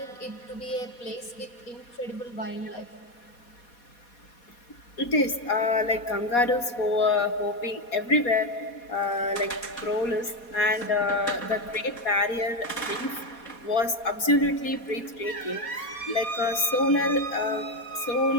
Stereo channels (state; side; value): late; right; 4.2 ms